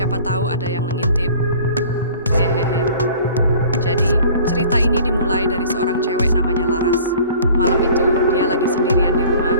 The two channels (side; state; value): both; inverted; correlation -0.48